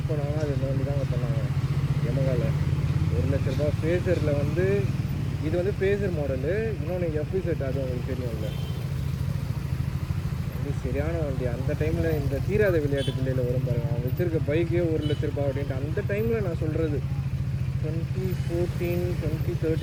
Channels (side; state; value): both; identical; correlation 1.00